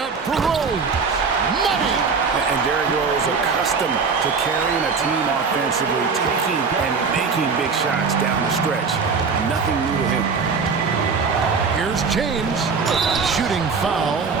for Rose. Money! And Derrick Rose, accustomed to carrying a team offensively, taking and making big shots down the stretch. Nothing new to him. Here's James. Shooting foul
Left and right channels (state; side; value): quieter; left; 5.1 dB